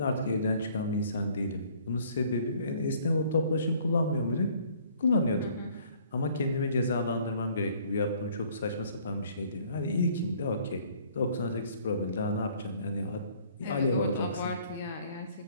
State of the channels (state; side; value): inverted; both; correlation -0.58